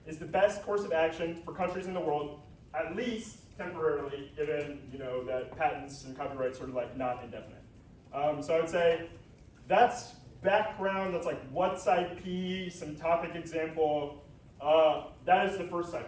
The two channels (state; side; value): identical; both; correlation 1.00